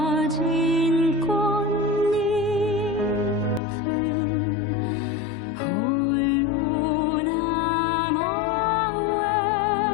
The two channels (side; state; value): right; drops out; at 3.6 s